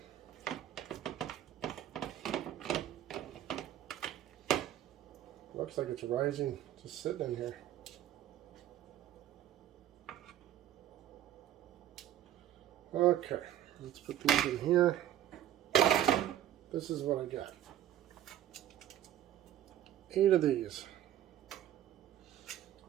Looks like it's rising, just sitting in here. Okay, let's put these in here. This is what I got. 8 of these.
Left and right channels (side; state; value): left; quieter; 12.0 dB